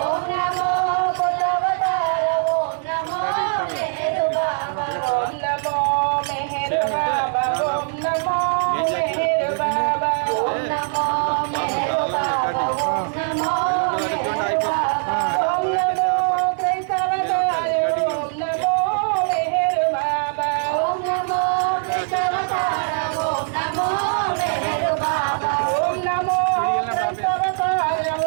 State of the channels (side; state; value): left; silent; 65 dB below the other